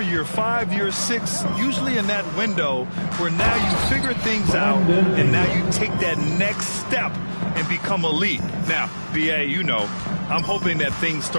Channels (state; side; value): inverted; both; correlation -1.00